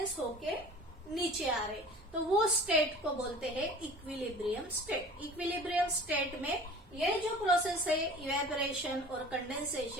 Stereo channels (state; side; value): normal; both; correlation 0.43